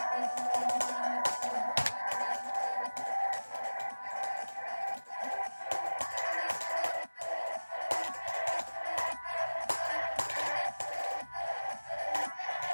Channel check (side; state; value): both; inverted; correlation -1.00